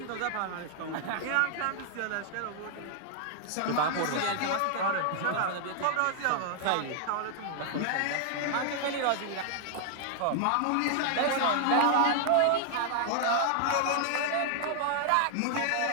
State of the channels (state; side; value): different; both; correlation 0.00